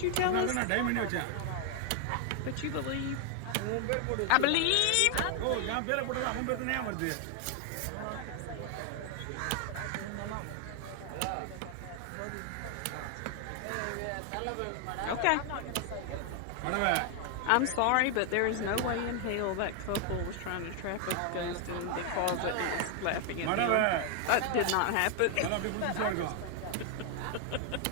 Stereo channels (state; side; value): different; both; correlation 0.00